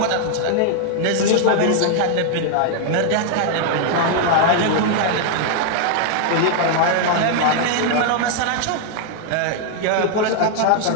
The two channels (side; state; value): both; different; correlation 0.00